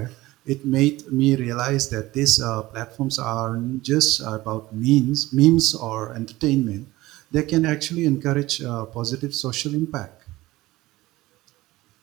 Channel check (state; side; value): quieter; left; 18.2 dB